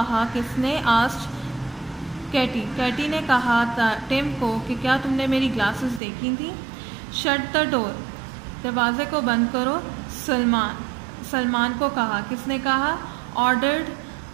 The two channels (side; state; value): left; drops out; at 6.0 s